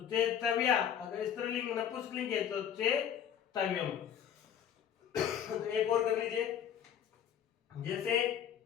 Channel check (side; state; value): right; quieter; 9.2 dB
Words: चे तव्या, अगर स्त्रीलिंग नपुंसकलिंग है तो चे तव्यम। तो एक और कर लीजिए, जैसे